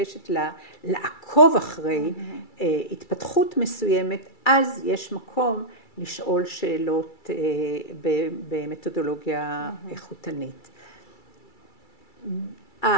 לעקוב אחרי התפתחות מסוימת, אז יש מקום לשאול שאלות במתודולוגיה איכותנית.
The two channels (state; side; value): late; right; 2.3 ms